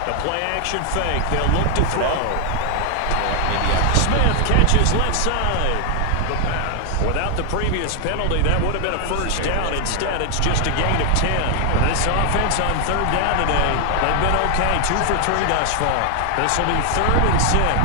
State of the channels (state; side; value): different; both; correlation 0.00